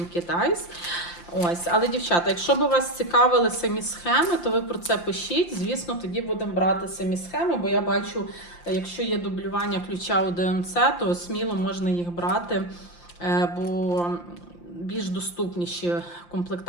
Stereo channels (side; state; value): right; late; 5.8 ms